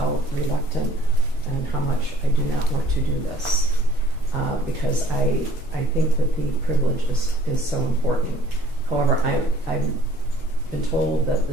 reluctant and how much I do not want to do this, because I think that the privilege is so important. However, I've been told that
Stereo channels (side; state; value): both; normal; correlation 0.56